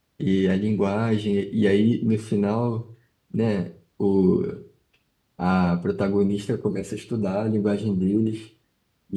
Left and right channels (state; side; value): identical; both; correlation 1.00